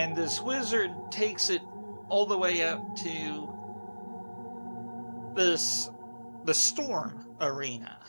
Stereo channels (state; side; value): inverted; both; correlation -1.00